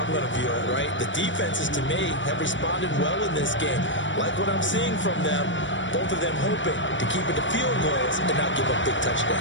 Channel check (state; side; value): late; right; 0.55 ms